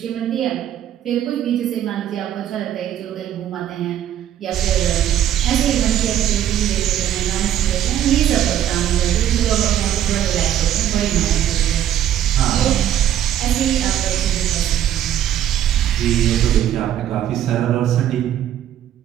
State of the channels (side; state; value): left; quieter; 11.2 dB